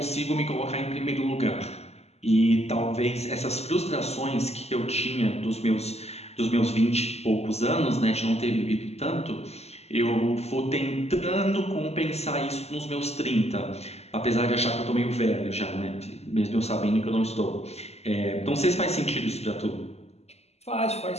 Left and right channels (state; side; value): late; right; 0.30 ms